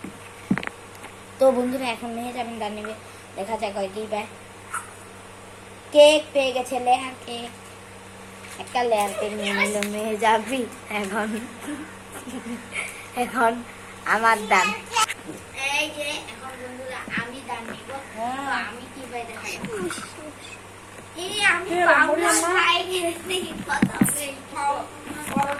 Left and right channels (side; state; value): both; identical; correlation 1.00